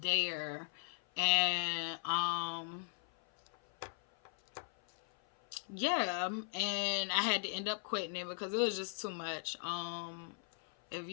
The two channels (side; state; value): right; silent; 53 dB below the other